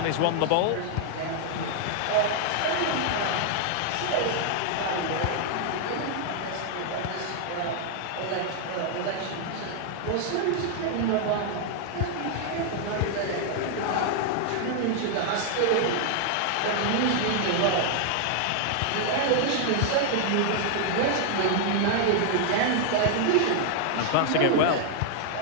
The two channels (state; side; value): different; both; correlation 0.00